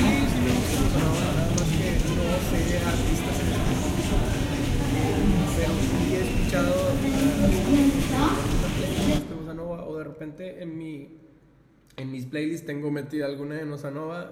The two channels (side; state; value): both; identical; correlation 1.00